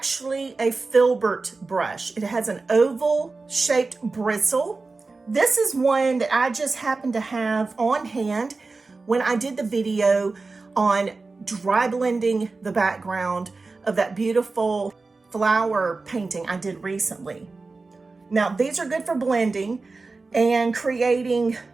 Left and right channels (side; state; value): left; quieter; 3.8 dB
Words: a FILBERT brush. It has an oval shaped bristle. This is one that I just happened to have on hand when I did the video on dry blending the background of that beautiful flower painting I did recently. Now, these are good for blending and creating